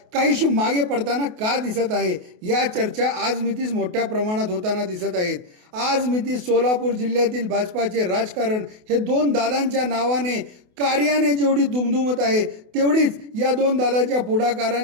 काहीशी मागे पडताना का दिसत आहे, या चर्चा आज मितीस मोठ्या प्रमाणात होताना दिसत आहेत. आज मितीस सोलापूर जिल्ह्यातील भाजपाचे राजकारण हे दोन दादांच्या नावाने कार्याने जेवढी दुमदुमत आहे, तेवढीच या दोन दादाच्या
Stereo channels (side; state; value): left; late; 28 ms